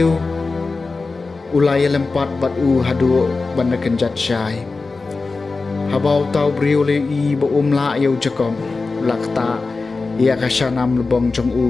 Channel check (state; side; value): quieter; right; 3.9 dB